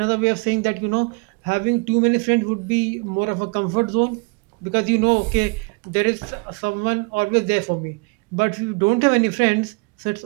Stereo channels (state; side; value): quieter; left; 31.3 dB